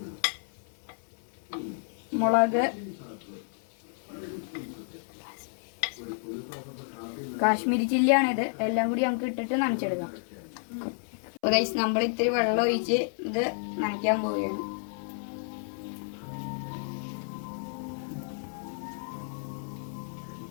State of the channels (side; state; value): right; silent; 56 dB below the other